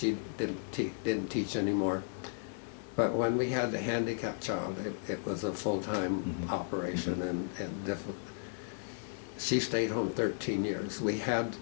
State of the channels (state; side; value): silent; right; 55 dB below the other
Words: didn't teach anymore. But when we had the handicapped child, it was a full-time operation, and different. She stayed home 13 years. We had